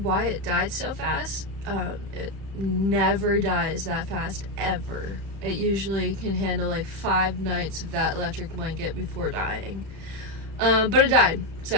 it died so fast. It never dies that fast, ever. It usually can handle like 5 nights of that electric blanket before dying. But it died,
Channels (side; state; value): left; late; 32 ms